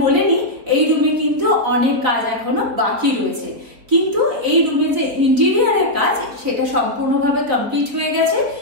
বলে নিই, এই রুমে কিন্তু অনেক কাজ এখনো বাকি রয়েছে, কিন্তু এই রুমে যে ইন্টেরিয়ারের কাজ সেটা সম্পূর্ণভাবে কমপ্লিট হয়ে গেছে।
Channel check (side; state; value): left; late; 4.1 ms